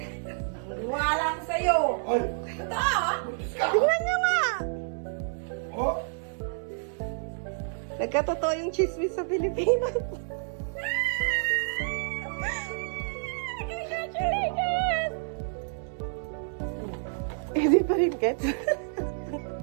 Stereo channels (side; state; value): left; silent; digital silence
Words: Wala ko sa'yo. Ay! Ito! Tingnan niyo nga! Oh! Nagkatotoo yung chismis sa Pilipinas. Congratulations! Hindi pa rin gets.